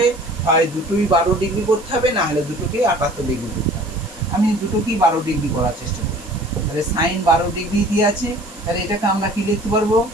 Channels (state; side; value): noise; right; hiss, 20 dB below the sound